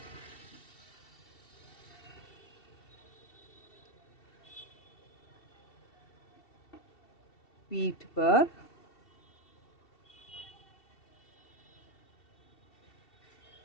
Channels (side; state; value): right; late; 2.7 ms